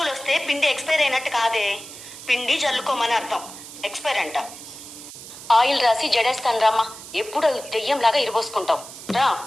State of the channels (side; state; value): right; noise; hiss, 14 dB below the sound